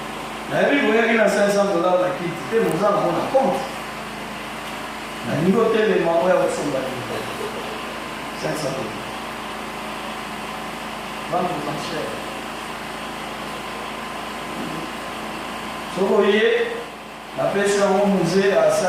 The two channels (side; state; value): both; identical; correlation 1.00